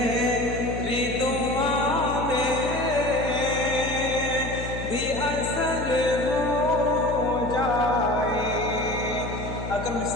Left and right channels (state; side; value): noise; left; hum, 7 dB below the sound